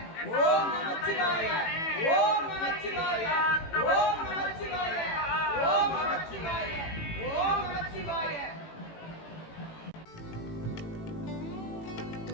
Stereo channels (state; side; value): late; right; 18 ms